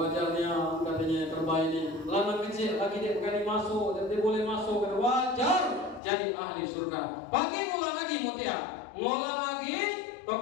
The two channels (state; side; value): drops out; right; at 6.0 s